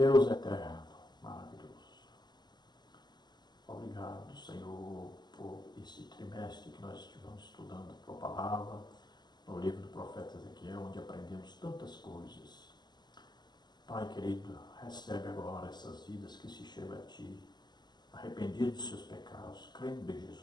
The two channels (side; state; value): right; late; 0.21 ms